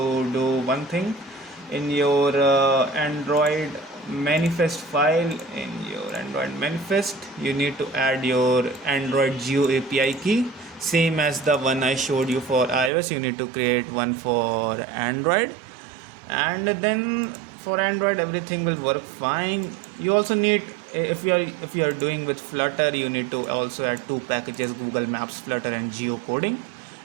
do one thing. In your Android manifest file, in your Android manifest, you need to add your Android Geo API key, same as the one I showed you for iOS. You need to create one for Android, and then for Android everything will work fine. You also need, if you are doing with Flutter, you need to also add two packages, Google Maps Flutter and geocoding,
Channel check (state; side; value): drops out; left; at 12.9 s